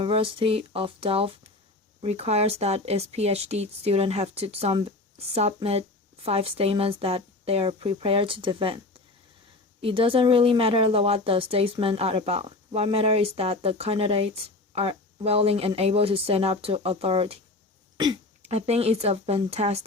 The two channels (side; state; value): right; quieter; 3.1 dB